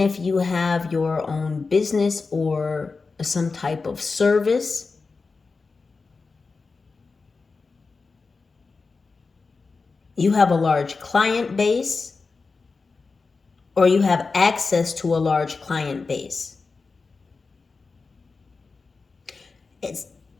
if you have your own business or some type of service, you have a large client base, or you have access to a large client base. It's,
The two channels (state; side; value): quieter; right; 4.3 dB